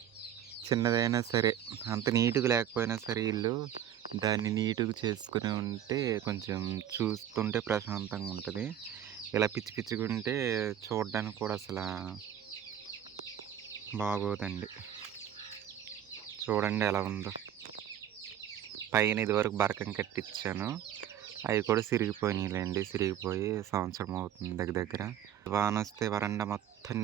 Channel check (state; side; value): quieter; left; 10.3 dB